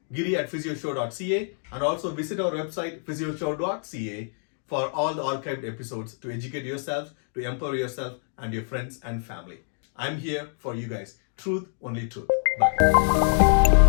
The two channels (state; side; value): silent; right; 57 dB below the other